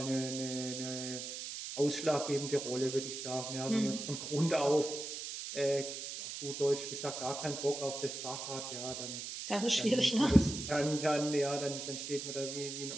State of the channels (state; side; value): noise; right; hiss, 7 dB below the sound